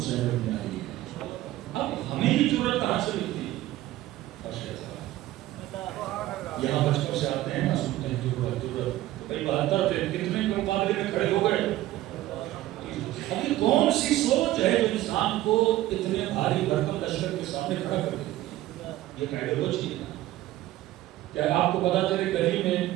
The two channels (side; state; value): left; quieter; 15.4 dB